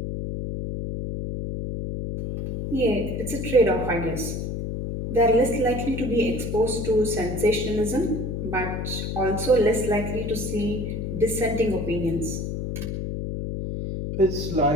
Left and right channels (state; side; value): noise; left; hum, 4 dB below the sound